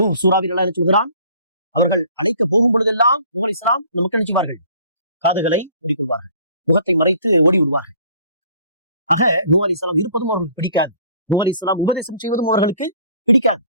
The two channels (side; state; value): both; inverted; correlation -0.55